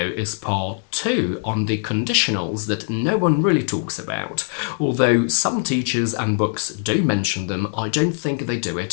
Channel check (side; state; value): right; silent; 59 dB below the other